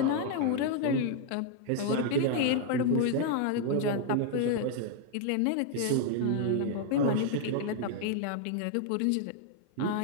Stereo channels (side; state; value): both; different; correlation 0.00